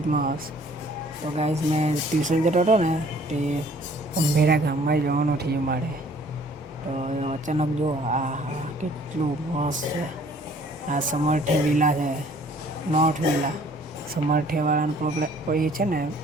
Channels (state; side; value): normal; both; correlation 0.56